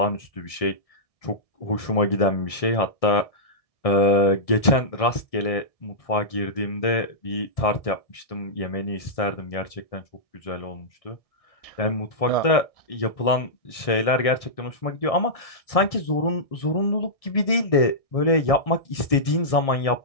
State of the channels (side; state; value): right; late; 1.6 ms